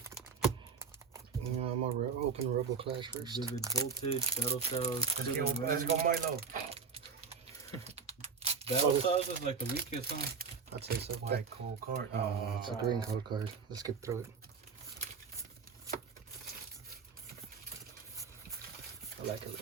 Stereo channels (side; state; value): left; quieter; 5.6 dB